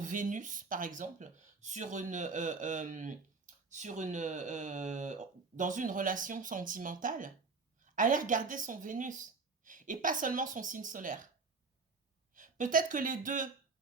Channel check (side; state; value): left; quieter; 4.3 dB